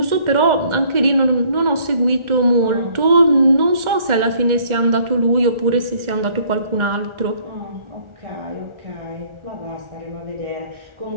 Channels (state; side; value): late; left; 1.4 ms